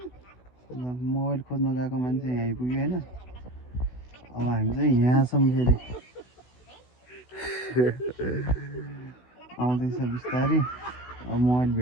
ल मोबाइल खोज्न गएको मान्छे यहाँ आइपुग्यो होइन अब हामी चाहिँ यहाँ छौँ फेरि आउँदैछ बिस्तारै अब मोबाइल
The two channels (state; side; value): late; right; 16 ms